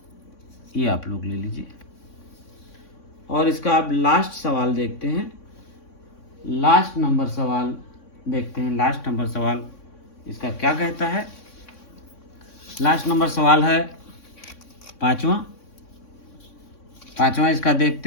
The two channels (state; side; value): late; right; 3.6 ms